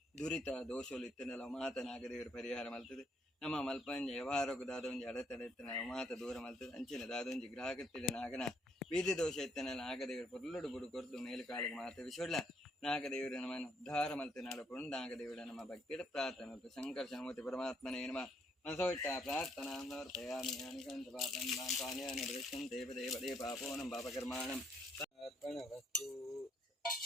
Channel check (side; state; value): both; normal; correlation 0.71